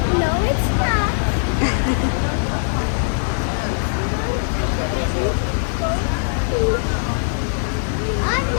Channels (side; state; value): right; silent; digital silence